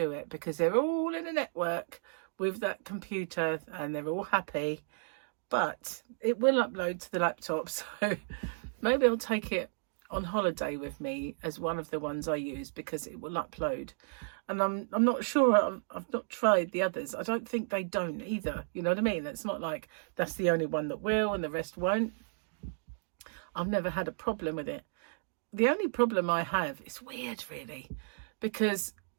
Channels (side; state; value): left; silent; digital silence